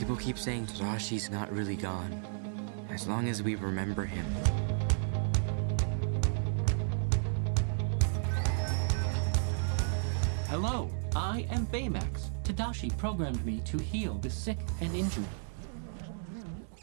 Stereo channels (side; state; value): left; silent; digital silence